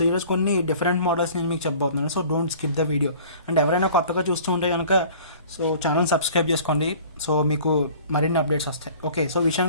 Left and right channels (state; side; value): inverted; both; correlation -0.48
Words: ఈరోజు కొన్ని different models నేను మీకు చెప్పబోతున్నాను. So don't skip the video. And ఎవరైనా కొత్తగా చూస్తూ ఉంటే కనుక సో ఛానల్ సబ్స్క్రైబ్ చేసుకోండి. సో మీకు మరిన్ని అప్డేట్స్ వస్తాయి. ఓకే, సో